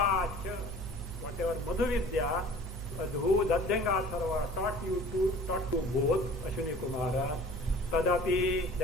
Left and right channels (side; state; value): both; normal; correlation 0.46